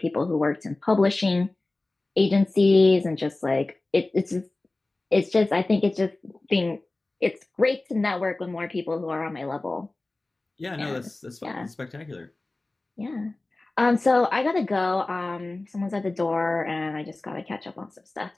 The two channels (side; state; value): right; quieter; 3.0 dB